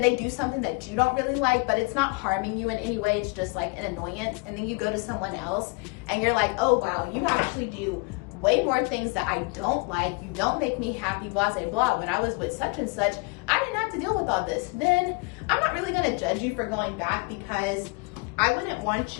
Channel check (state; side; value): quieter; right; 29.9 dB